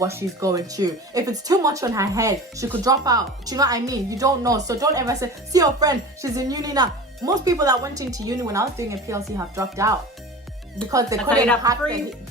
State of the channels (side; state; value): both; normal; correlation 0.35